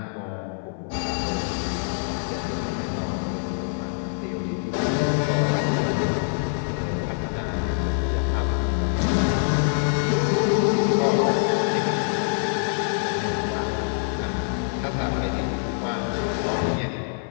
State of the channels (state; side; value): silent; right; 58 dB below the other